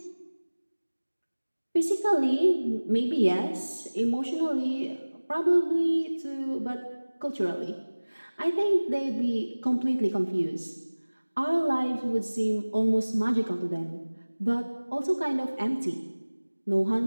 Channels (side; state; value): both; inverted; correlation -1.00